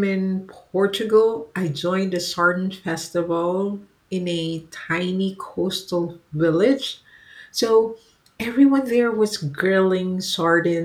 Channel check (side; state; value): both; identical; correlation 1.00